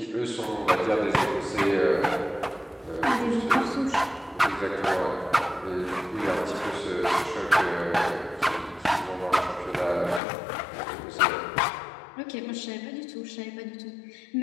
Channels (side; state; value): right; drops out; at 10.2 s